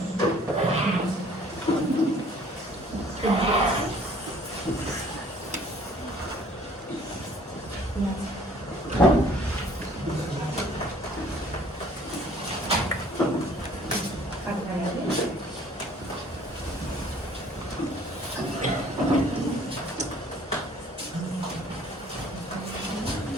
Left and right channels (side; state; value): both; normal; correlation 0.56